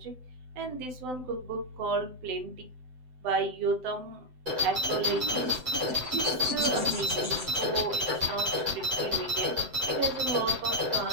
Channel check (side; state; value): left; late; 7.8 ms